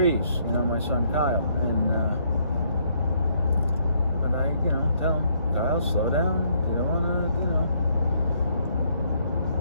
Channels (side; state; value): both; inverted; correlation -0.69